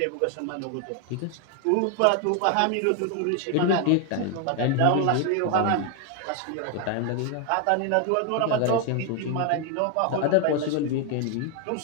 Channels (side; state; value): both; different; correlation 0.01